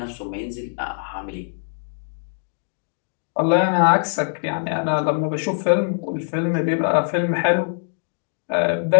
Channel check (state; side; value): silent; right; digital silence